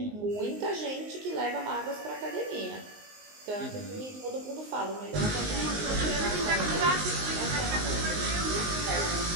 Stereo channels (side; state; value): left; late; 19 ms